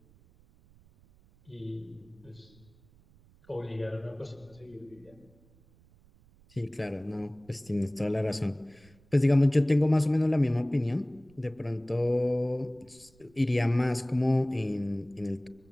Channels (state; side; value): noise; right; rumble, 29 dB below the sound